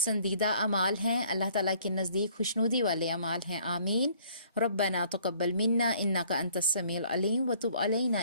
اعمال ہیں، اللہ تعالیٰ کے نزدیک خوشنودی والے اعمال ہیں۔ آمین۔ ربنا تقبل منا انک انت السمیع العلیم وتب علینا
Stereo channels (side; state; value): both; inverted; correlation -0.59